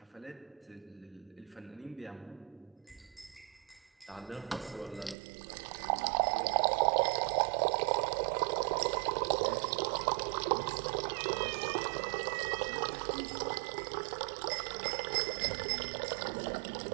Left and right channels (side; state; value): left; drops out; at 5.2 s